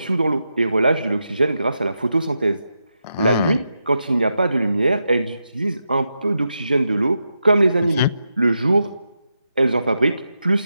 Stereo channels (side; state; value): both; inverted; correlation -0.87